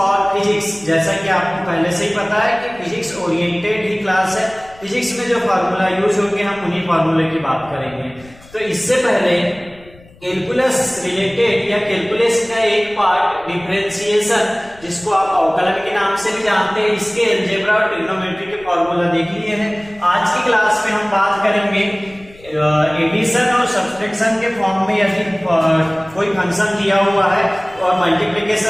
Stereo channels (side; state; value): left; noise; rumble, 24 dB below the sound